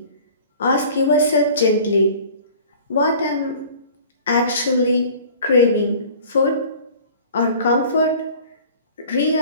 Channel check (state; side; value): inverted; both; correlation -0.46